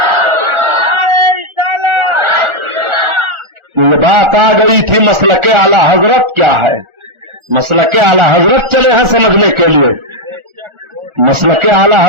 رسالت. یہ بات آ گئی تھی مسلک اعلی حضرت کیا ہے. مسلک اعلی حضرت چلے ہیں سمجھنے کے لیے. مسلک اعلی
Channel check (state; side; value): late; left; 1.4 ms